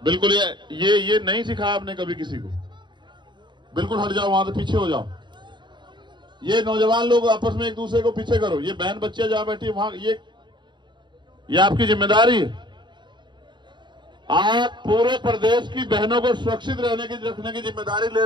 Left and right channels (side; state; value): left; late; 0.22 ms